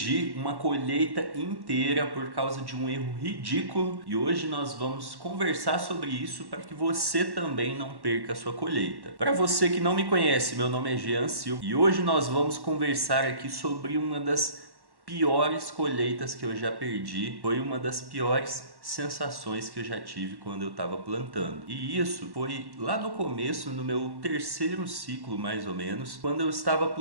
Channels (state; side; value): late; left; 1.1 ms